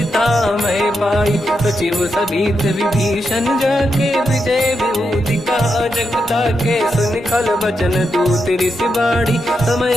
मैं पाई, सचिव सभीत विभीषण जाके, विजय विभूति का जगता के, सुन खल बचन दूत ऋषि बाड़ी,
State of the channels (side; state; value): both; normal; correlation 0.85